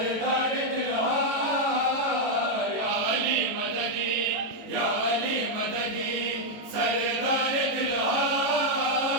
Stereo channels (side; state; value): left; late; 18 ms